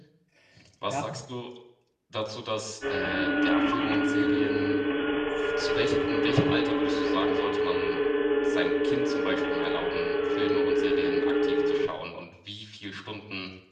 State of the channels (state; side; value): identical; both; correlation 1.00